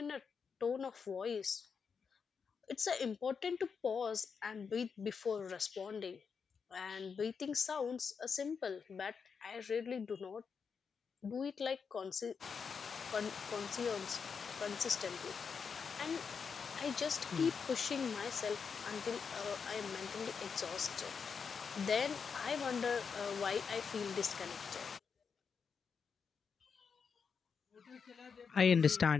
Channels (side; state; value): right; quieter; 6.0 dB